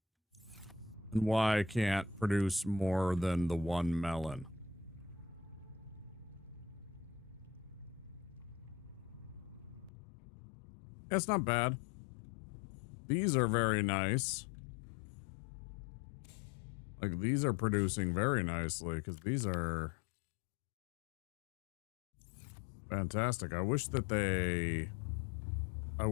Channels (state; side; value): drops out; right; at 9.9 s